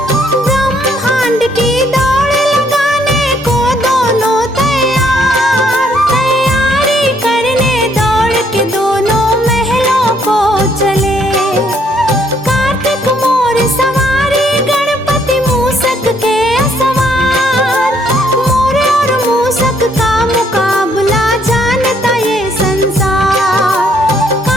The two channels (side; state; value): both; normal; correlation 0.68